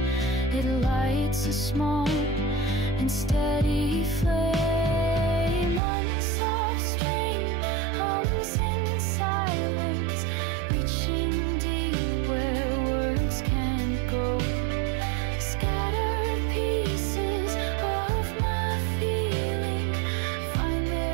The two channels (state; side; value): drops out; left; at 5.8 s